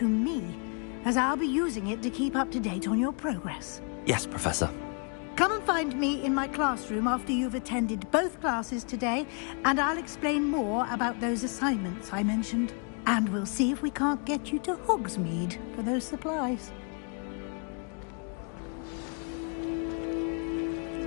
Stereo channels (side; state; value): right; quieter; 39.0 dB